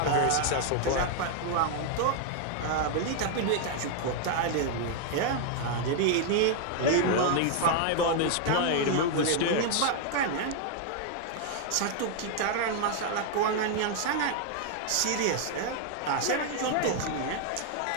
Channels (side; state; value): both; different; correlation 0.00